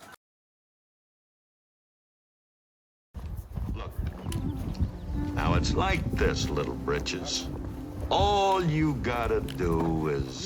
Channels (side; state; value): both; identical; correlation 1.00